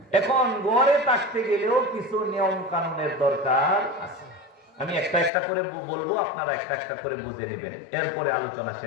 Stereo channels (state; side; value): drops out; right; at 5.3 s